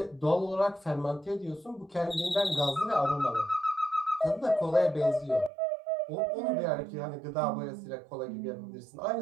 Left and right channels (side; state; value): left; drops out; at 5.5 s